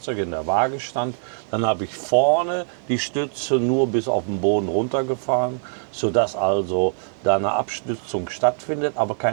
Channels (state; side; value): silent; left; digital silence